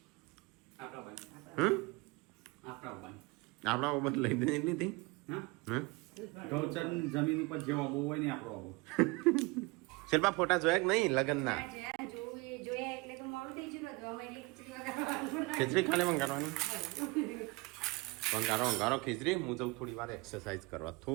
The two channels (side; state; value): left; quieter; 25.6 dB